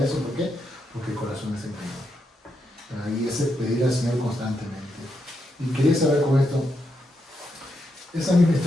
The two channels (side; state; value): both; normal; correlation 0.82